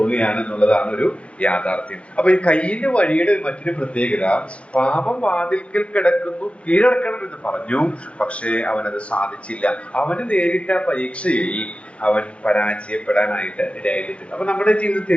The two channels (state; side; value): late; right; 0.061 ms